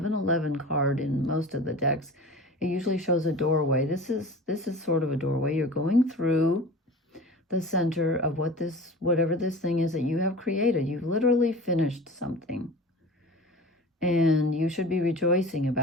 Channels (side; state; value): both; normal; correlation 0.37